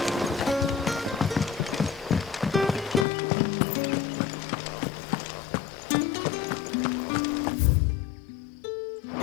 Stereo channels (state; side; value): drops out; right; at 3.1 s